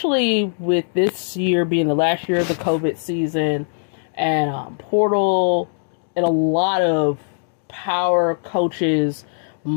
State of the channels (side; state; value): right; silent; digital silence